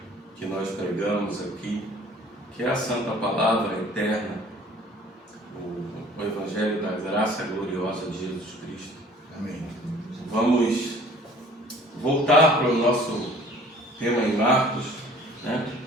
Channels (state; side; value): normal; both; correlation 0.52